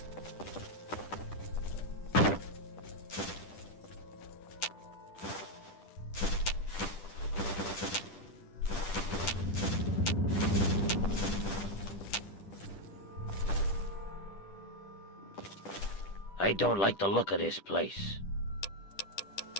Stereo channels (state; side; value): late; right; 10 ms